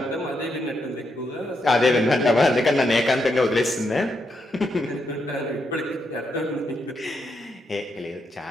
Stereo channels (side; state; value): both; normal; correlation 0.81